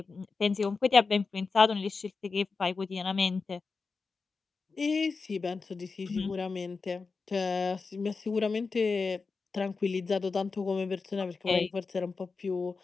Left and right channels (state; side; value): quieter; right; 4.5 dB